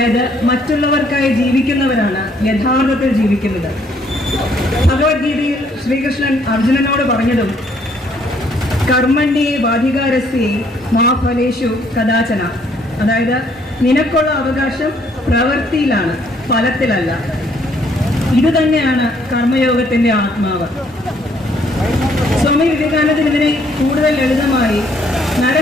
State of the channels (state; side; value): normal; both; correlation 0.66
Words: മറ്റുള്ളവർക്കായി ജീവിക്കുന്നവരാണ് യഥാർത്ഥത്തിൽ ജീവിക്കുന്നത്. ഭഗവത്ഗീതയിൽ ശ്രീകൃഷ്ണൻ അർജുനനോട് പറഞ്ഞതും കർമ്മണ്യേ വാധികാരസ്യേ മാ ഫലേഷു കദാചന, അതായത് നിനക്കുള്ള അവകാശം പ്രവൃത്തിയിലാണ്, ഫലത്തിലല്ല. ഇത് തന്നെയാണ് കർമ്മയോഗത്തിന്റെ ആത്മാവ്. സ്വാമി വിവേകാനന്ദൻ ഇതിനെ കൂടുതൽ ലളിതമായി